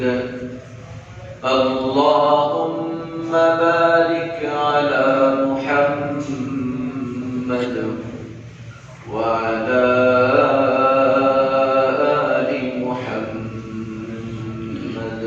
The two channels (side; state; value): both; identical; correlation 1.00